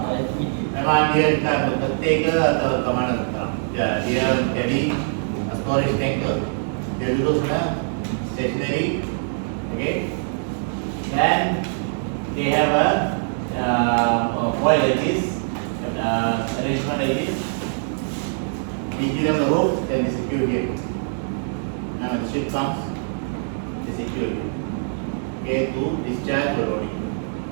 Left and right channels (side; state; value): left; silent; digital silence